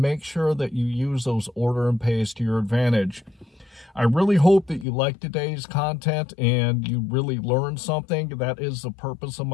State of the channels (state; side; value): drops out; right; at 4.9 s